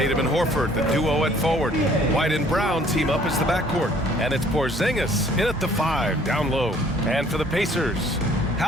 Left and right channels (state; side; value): normal; both; correlation 0.58